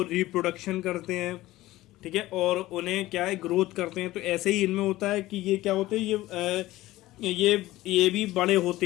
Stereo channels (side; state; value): right; quieter; 17.0 dB